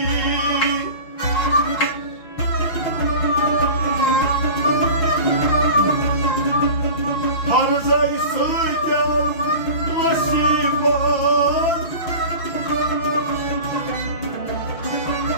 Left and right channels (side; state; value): right; late; 5.9 ms